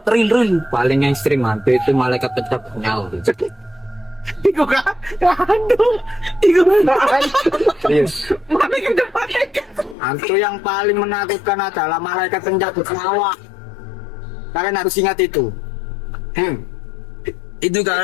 real. Paling yang ekstrim hantu itu malaikat pencabut nyawa. Iku kan aduh iku Serius. Hantu yang paling menakutkan adalah malaikat pencabut nyawa. Kalian harus ingat itu. Itu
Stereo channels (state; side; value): drops out; right; at 10.0 s